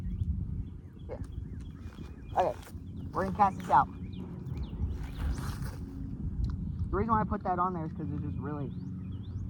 Yeah. Okay, we're gonna cast this out. The reason why I put that on there is because it's just really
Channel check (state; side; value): identical; both; correlation 1.00